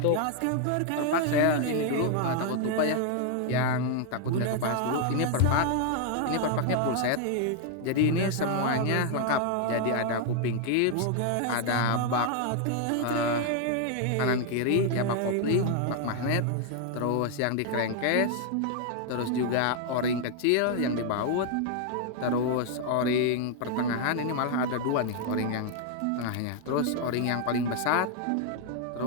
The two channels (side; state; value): both; different; correlation 0.00